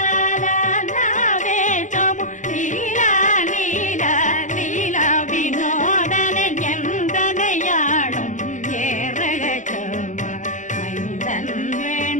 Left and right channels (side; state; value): right; late; 0.36 ms